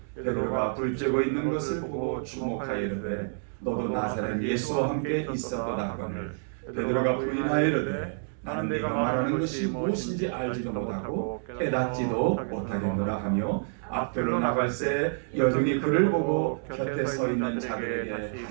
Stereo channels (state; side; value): silent; left; digital silence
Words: 베드로가 불쬐고 있는 것을 보고 주목하여 이르되 너도 나사렛 예수와 함께 있었도다 하거늘 베드로가 부인하여 이르되 나는 네가 말하는 것이 무엇인지 알지도 못하고 깨닫지도 못하겠노라 하며 앞들로 나갈새 여종이 그를 보고 곁에 서 있는 자들에게